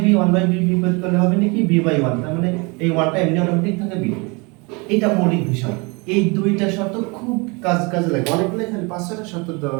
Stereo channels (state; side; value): quieter; left; 28.8 dB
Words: 1/b বিপরীত করলে হবে নাকি b/1, তার মানে এই 1টা এমনি অটোমেটিক থাকে b। এটা মৌলিক বিষয়। এই দুইটা শর্ত খুব কাজে লাগে, অনেকগুলো এখানে 5-6টা শর্ত